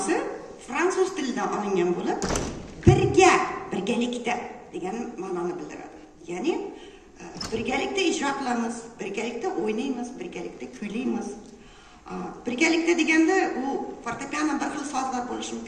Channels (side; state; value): both; identical; correlation 1.00